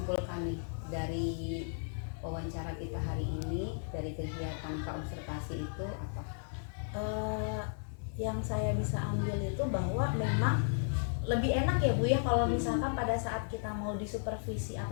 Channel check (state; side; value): silent; right; digital silence